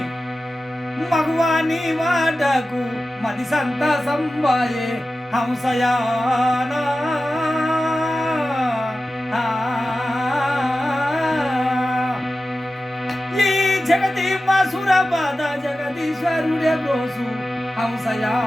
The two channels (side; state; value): both; normal; correlation 0.94